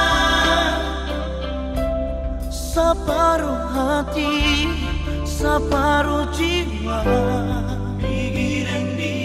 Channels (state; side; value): identical; both; correlation 1.00